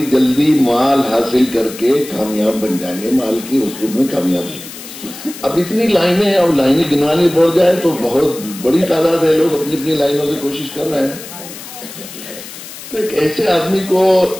جلدی مال حاصل کر کے کامیاب بن جائیں گے، مال کی رسوخ میں کامیابی. اب اتنی لائنیں، اب لائنیں گنوانی پڑ جائے تو بہت بڑی تعداد ہے لوگ اپنی اپنی لائنوں سے کوشش کر رہے ہیں. تو ایک ایسے آدمی کو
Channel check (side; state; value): left; noise; hiss, 14 dB below the sound